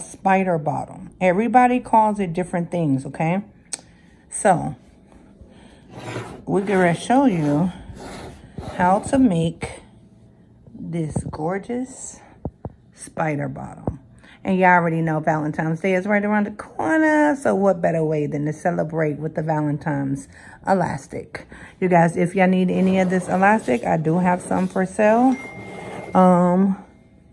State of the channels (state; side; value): identical; both; correlation 1.00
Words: bottom. Everybody calls it different things, okay? So, we're gonna show you how to make this gorgeous spider bottom. And you already know Valentine's Day is right around the corner. So what better way than to celebrate with the Valentine's elastic. You guys, if y'all need any of this elastic, I do have some for sale. And